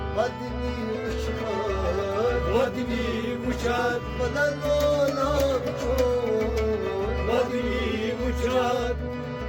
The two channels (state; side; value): identical; both; correlation 1.00